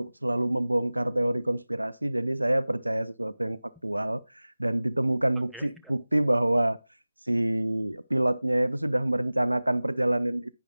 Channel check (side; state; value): both; inverted; correlation -0.99